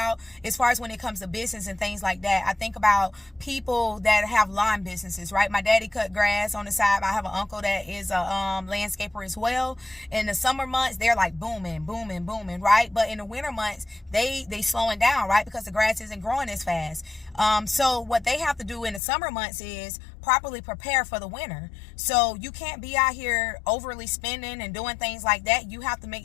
as far as when it comes to business and things like that, I think about people that have lawn businesses, right? My daddy cut grass on the side. I have an uncle that is a landscaper as well. In the summer months, they're like booming, booming, booming, right? But in the winter months, they slowing down, right? Because the grass isn't growing as fast. So what they have to do in the summer months is properly prepare for the winter. So you can't be out here overly spending and doing things like that. You have to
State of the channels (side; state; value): right; drops out; at 19.0 s